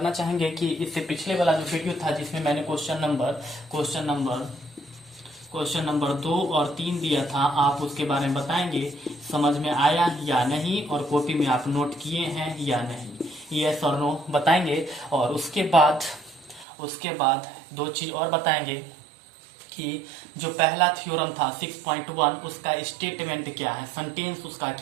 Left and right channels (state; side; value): drops out; left; at 16.7 s